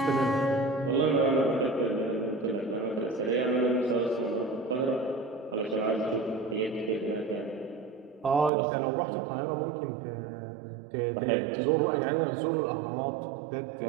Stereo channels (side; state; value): left; drops out; at 8.5 s